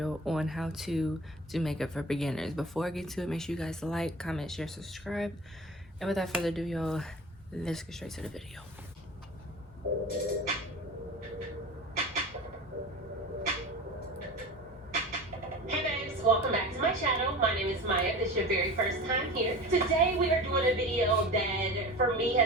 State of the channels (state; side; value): normal; both; correlation 0.35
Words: on how to do makeup for beginners. Before I get to it, make sure you guys like, comment, share, subscribe, and without further ado, y'all, let's get straight to the video. Hey babes, welcome back to my channel. My name is Maya. If this is your very first time here. Today we are doing a video that for me